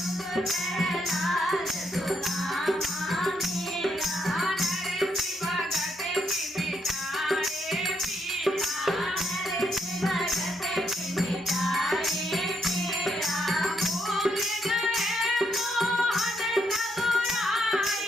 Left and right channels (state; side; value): normal; both; correlation 0.76